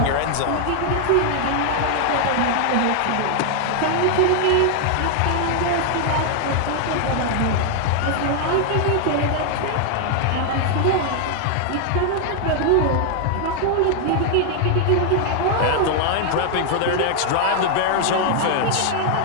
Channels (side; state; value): both; different; correlation 0.00